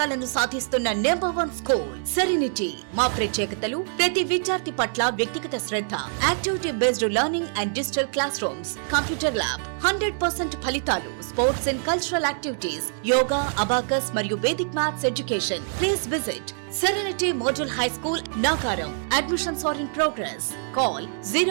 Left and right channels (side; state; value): left; silent; digital silence